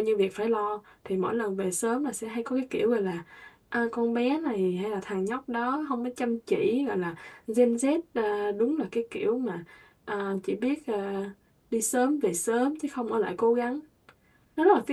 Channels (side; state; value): both; identical; correlation 1.00